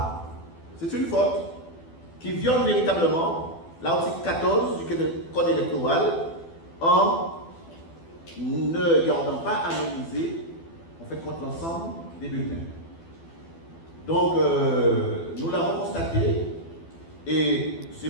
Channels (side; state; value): right; late; 12 ms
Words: c'est une faute qui viole véritablement l'article 14 du Code électoral en ne gardant pas anonymisé, en fait, contre l'ensemble des bulletins. Donc, nous l'avons constaté, et c'est